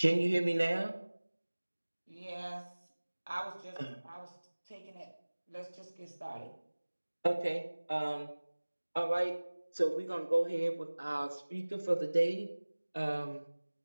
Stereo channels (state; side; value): inverted; both; correlation -1.00